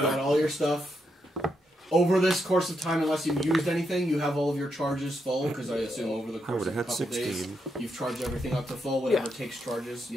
got all your stuff. Over this course of time, unless you've used anything, you have all of your charges full, because I assume over the I course would of have a had couple 16. days, you've charged everything up to full, whatever takes charges,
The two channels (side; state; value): both; normal; correlation 0.81